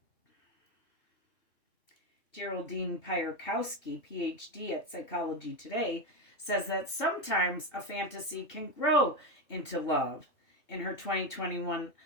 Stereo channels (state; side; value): late; right; 2.7 ms